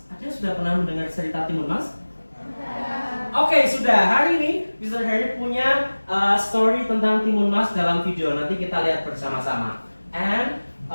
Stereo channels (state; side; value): inverted; both; correlation -1.00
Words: Ada yang sudah pernah mendengar cerita Timun Mas? Oke, sudah. Hari ini Mr. Harry punya story tentang Timun Mas dalam video. Nanti kita lihat bersama-sama. And